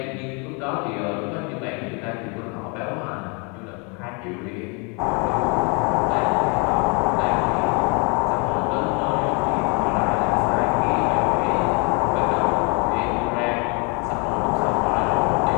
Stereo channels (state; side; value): quieter; right; 33.2 dB